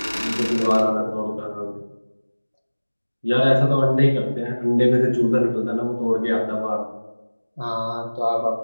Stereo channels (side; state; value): both; inverted; correlation -1.00